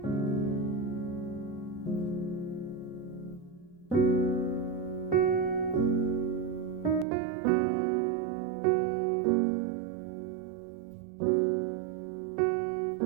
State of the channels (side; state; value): left; drops out; at 7.1 s